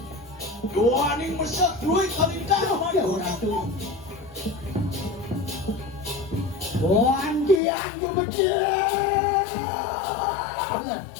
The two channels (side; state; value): right; drops out; at 7.6 s